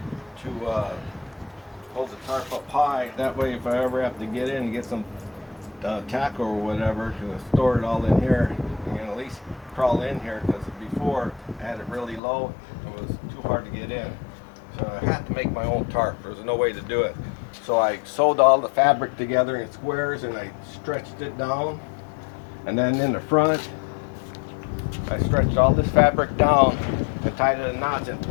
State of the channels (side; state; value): right; drops out; at 12.2 s